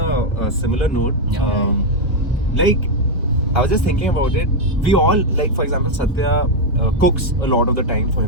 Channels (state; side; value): normal; both; correlation 0.02